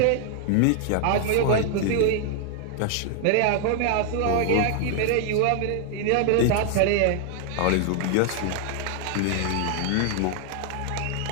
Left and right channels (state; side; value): different; both; correlation 0.00